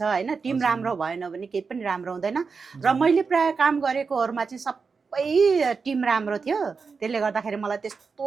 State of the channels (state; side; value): quieter; left; 5.0 dB